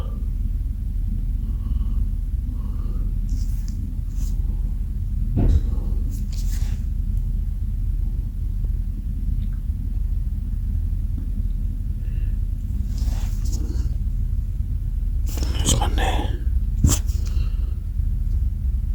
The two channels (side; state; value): both; identical; correlation 1.00